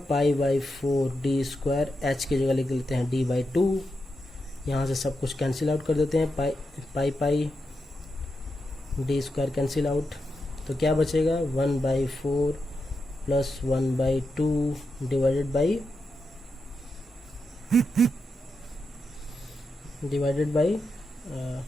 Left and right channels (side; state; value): both; normal; correlation 0.86